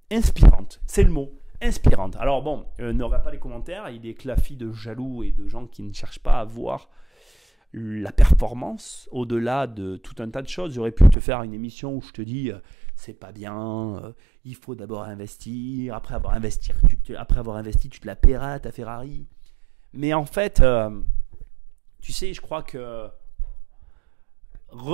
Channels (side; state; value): left; drops out; at 11.2 s